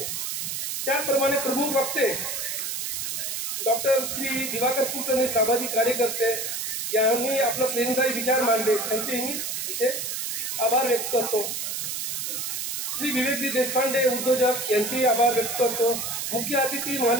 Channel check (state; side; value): noise; right; hiss, 3 dB below the sound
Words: त्याचप्रमाणे प्रमुख वक्ते डॉक्टर श्री दिवाकर कुलकर्णी, सामाजिक कार्यकर्ते यांनी आपला प्रेरणादायी विचार मांडले, त्यांचेही मी इथे आभार व्यक्त करतो। श्री विवेकजी देशपांडे, उद्योजक, यांचेही आभार व्यक्त करतो। मुख्य अतिथी